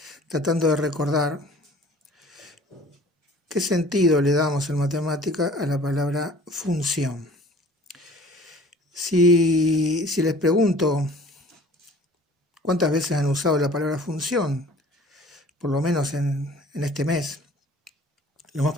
tratando de recordar qué sentido le damos en matemática a la palabra función. Si les pregunto cuántas veces han usado la palabra función, por lo menos en este mes, lo más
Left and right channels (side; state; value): both; normal; correlation 0.49